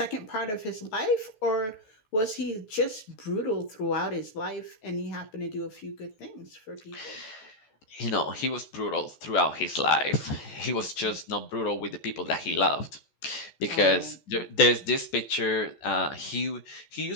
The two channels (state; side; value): late; right; 14 ms